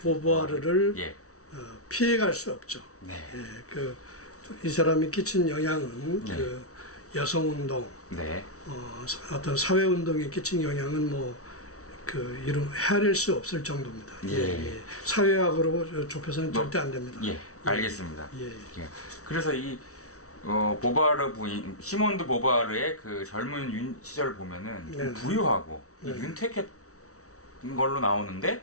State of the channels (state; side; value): late; right; 0.64 ms